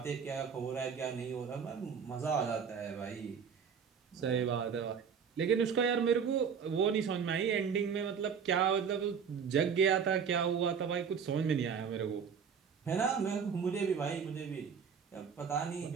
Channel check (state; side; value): quieter; left; 6.7 dB